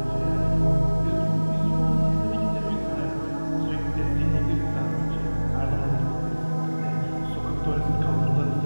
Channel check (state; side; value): inverted; both; correlation -1.00